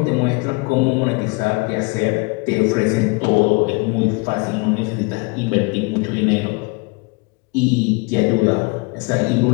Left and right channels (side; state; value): right; quieter; 28.0 dB